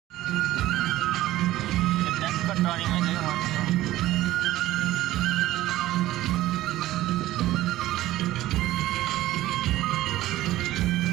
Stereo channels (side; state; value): left; quieter; 15.6 dB